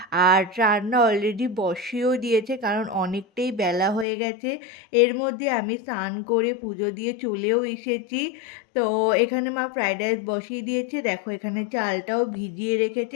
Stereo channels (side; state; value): right; drops out; at 4.0 s